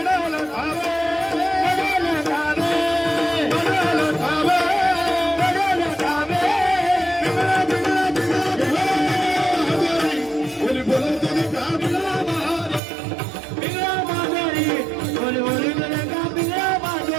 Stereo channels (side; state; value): left; drops out; at 12.8 s